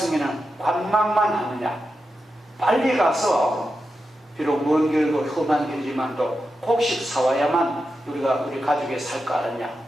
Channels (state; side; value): normal; both; correlation 0.89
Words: 관망만 하느냐? 빨리 가서 비록 먼 길고 험한 길이지만도 곡식 사와야만 우리 가족이 살 거 아니냐?